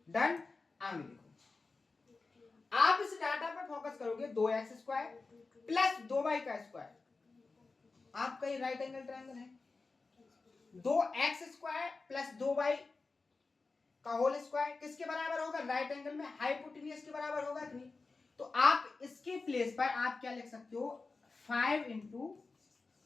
डन। आगे देखो, आप इस डाटा पर फोकस करोगे 2x² प्लस 2y का स्क्वायर। आपका ये राइट एंगल ट्रायंगल है। 2x² प्लस 2y का होल स्क्वायर किसके बराबर होगा? राइट एंगल में हाइपोटेन्यूज के बराबर होगा कि नहीं? तो आप इसके प्लेस पर आप क्या लिख सकते हो? 5 इंटू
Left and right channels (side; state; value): right; quieter; 3.9 dB